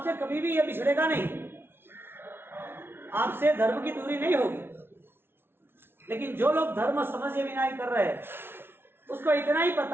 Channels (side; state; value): left; late; 0.11 ms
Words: कभी भी यह बिछड़ेगा नहीं, आपसे धर्म की दूरी नहीं होगी। लेकिन जो लोग धर्म समझे बिना ही कर रहे हैं, उसको इतना ही